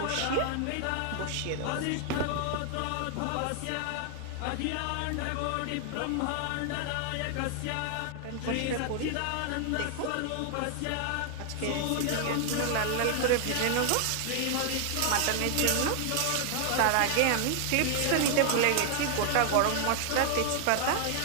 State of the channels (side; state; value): both; different; correlation 0.00